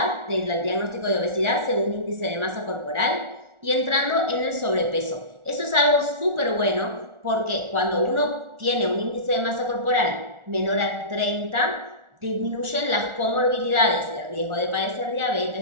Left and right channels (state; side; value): late; left; 1.4 ms